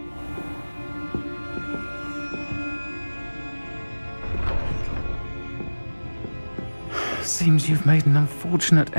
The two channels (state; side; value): inverted; both; correlation -1.00